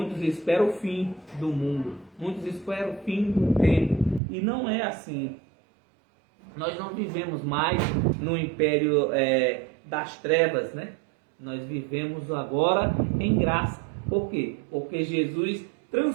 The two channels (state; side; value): drops out; left; at 4.2 s